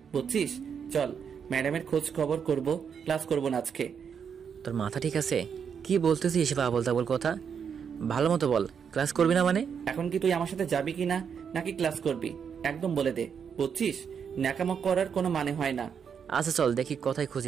বুঝছিস? চল, ম্যাডামের খোঁজ খবর করব, ক্লাস করব না আজকে। তোর মাথা ঠিক আছে? কি বলতেছিস এসব আবল তাবল কথা? ভালো মতো বল, ক্লাস করবি না মানে? এখন কি তুই আমার সাথে যাবি কি না, নাকি ক্লাস করবি? একদম বলে দে, বুঝছিস? ন্যাকামো করার কোনো মানে হয় না। আচ্ছা চল দেখি কোথায়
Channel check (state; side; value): quieter; left; 7.1 dB